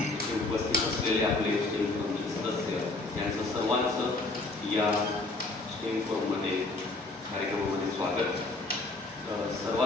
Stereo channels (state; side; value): quieter; right; 3.1 dB